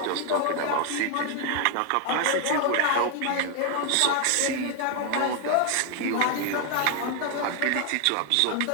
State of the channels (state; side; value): different; both; correlation 0.01